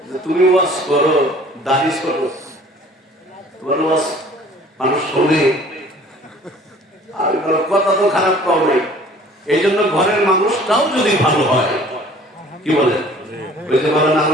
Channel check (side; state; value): both; normal; correlation 0.51